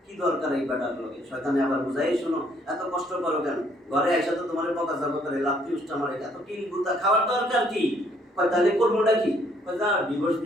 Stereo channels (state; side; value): normal; both; correlation 0.66